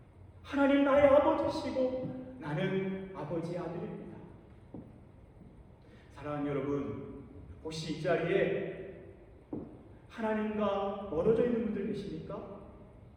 하나님 나의 아버지시고 나는 아버지의 아들입니다. 사랑하는 여러분, 혹시 이 자리에 하나님과 멀어져 있는 분들 계십니까?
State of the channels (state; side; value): identical; both; correlation 1.00